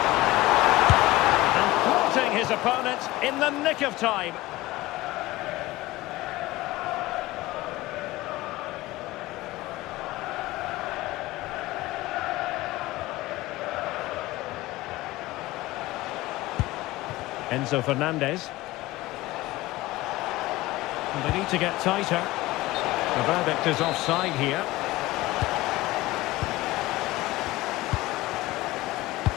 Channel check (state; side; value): quieter; right; 18.7 dB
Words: And thwarting his opponent in the nick of time. Enzo Fernandez. And they need to get tighter. The verdict is offside here.